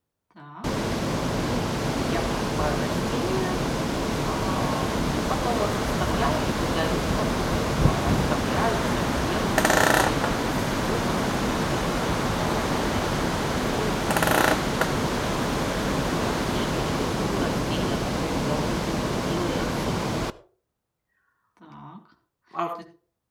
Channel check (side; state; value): both; identical; correlation 1.00